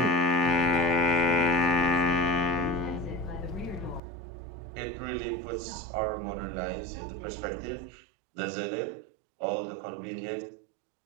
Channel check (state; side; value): drops out; left; at 4.0 s